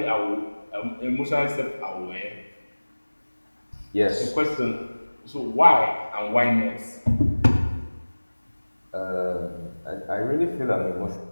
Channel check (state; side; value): inverted; both; correlation -1.00